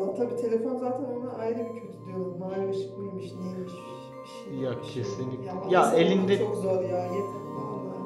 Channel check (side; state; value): both; identical; correlation 1.00